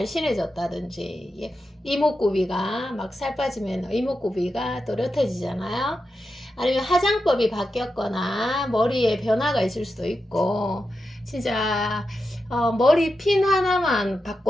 이목구비가 막 살 빠지면 이목구비가 또렷해지잖아요. 아니면 화장법이 바뀌었거나 머리에 변화가 있을 수도 있고, 진짜 머리 핀 하나만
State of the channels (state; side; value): normal; both; correlation 0.89